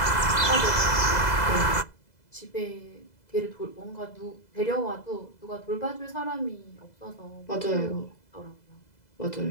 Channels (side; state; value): right; late; 2.0 ms